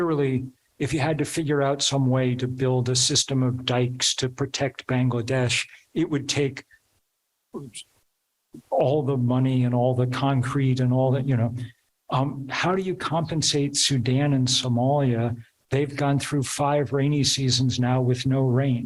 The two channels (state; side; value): identical; both; correlation 1.00